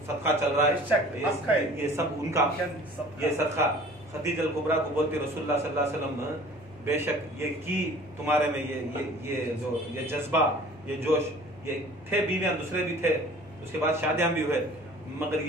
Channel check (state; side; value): normal; both; correlation 0.47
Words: सदका चल रहा है ये सब उनका, ये सदका खतीजतुल कुबरा को बोलते रसूलुल्लाह सल्लल्लाहु अलैहि वसल्लम बेशक ये की तुम्हारे में ये जज्बा, ये जोश, ये थे बीवियां दूसरे भी थे, उसके बाद शादियां भी हुए, मगर